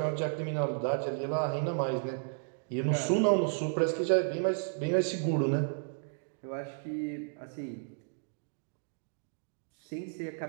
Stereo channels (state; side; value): silent; left; digital silence